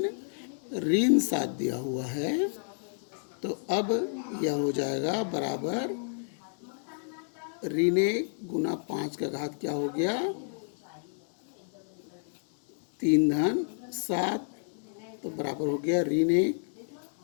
ऋण 7 दिया हुआ है। तो अब यह हो जाएगा बराबर ऋण 1 गुना 5 का घात क्या हो गया 3 धन 7। तो बराबर हो गया ऋण 1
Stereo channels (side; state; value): right; silent; 57 dB below the other